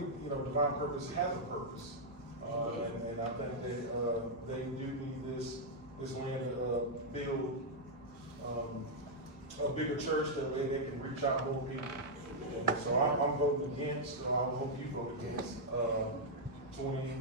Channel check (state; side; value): normal; both; correlation -0.04